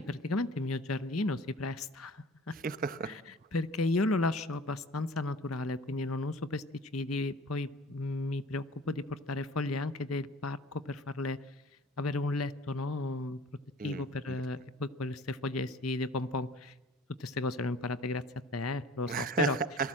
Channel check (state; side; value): normal; both; correlation 0.45